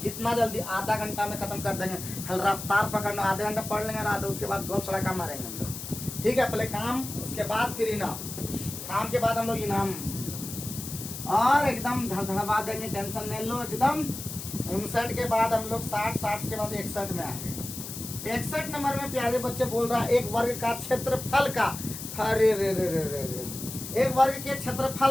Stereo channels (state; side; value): noise; left; hiss, 9 dB below the sound